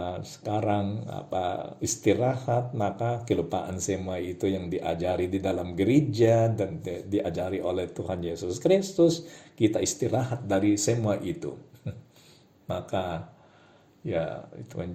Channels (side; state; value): both; identical; correlation 1.00